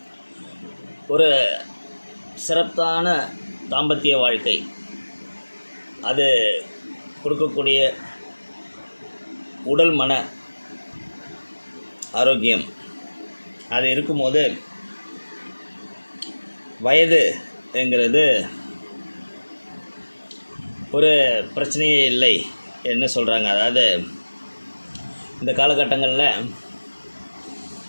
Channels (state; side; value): inverted; both; correlation -1.00